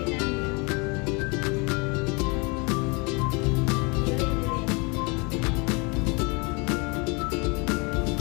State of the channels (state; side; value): quieter; right; 30.0 dB